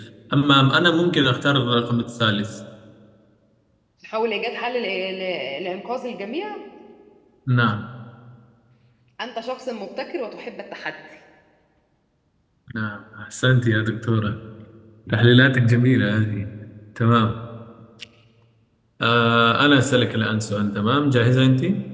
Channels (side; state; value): both; identical; correlation 1.00